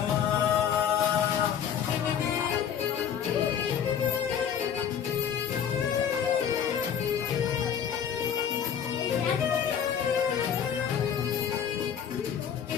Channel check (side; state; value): right; quieter; 8.4 dB